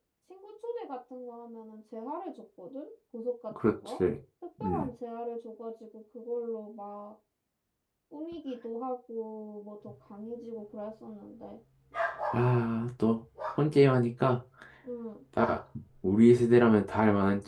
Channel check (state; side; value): identical; both; correlation 1.00